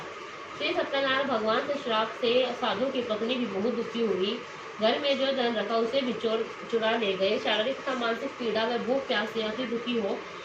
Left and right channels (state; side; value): identical; both; correlation 1.00